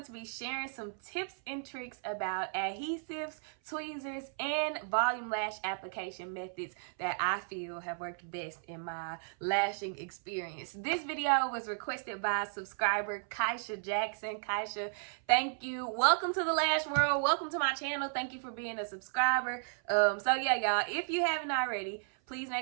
to be sharing some tips and tricks about adhesives, tweezers, and volume lash application methods that I feel have worked best in my lashing experience. This video was requested by subscriber Kaisha Jackson. Kaisha, thank you. Welcome to the lash world. Welcome to my channel. Thank you for being a subscriber. So yeah, y'all, if you haven't already, please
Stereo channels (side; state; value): left; silent; 55 dB below the other